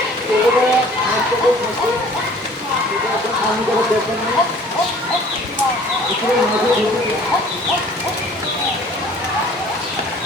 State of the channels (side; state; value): both; normal; correlation 0.51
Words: আমি যারা দেখেন না মাঝে ঢুকে